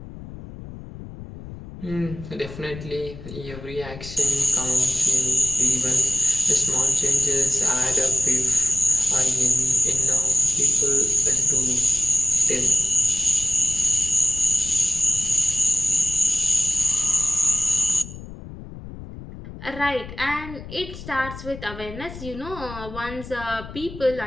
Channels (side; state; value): left; noise; rumble, 14 dB below the sound